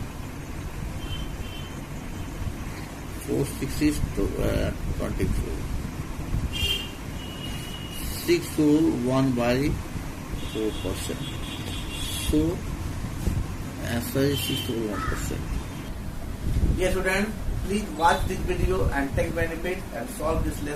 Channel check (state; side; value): identical; both; correlation 1.00